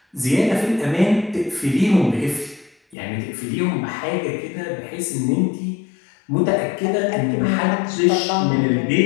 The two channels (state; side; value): drops out; right; at 3.0 s